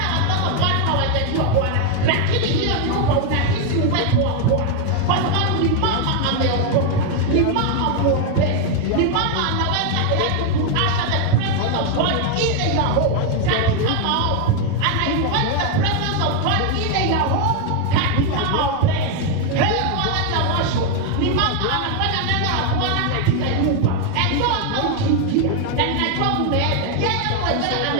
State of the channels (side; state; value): both; different; correlation 0.01